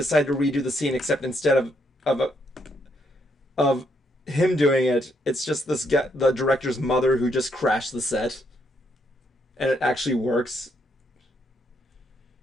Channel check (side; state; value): both; normal; correlation 0.75